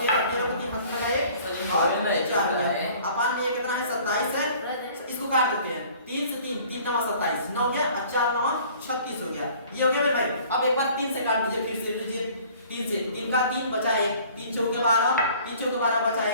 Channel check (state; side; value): inverted; both; correlation -0.52